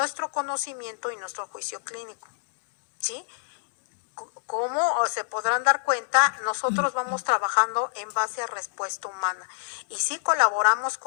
conocimiento y nuestro juicio clínico, ¿sí? Como se podrán dar cuenta, nosotros vamos trabajando en base a respuesta humana, y sí colaboramos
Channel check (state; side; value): silent; right; digital silence